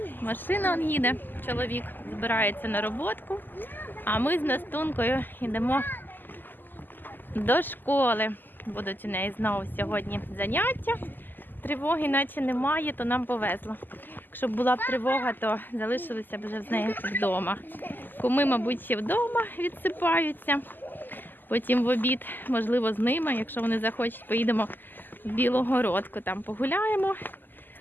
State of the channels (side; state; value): right; late; 0.089 ms